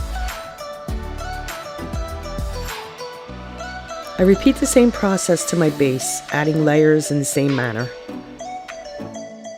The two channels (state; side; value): identical; both; correlation 1.00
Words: I repeat the same process to my base, adding layers in the same manner.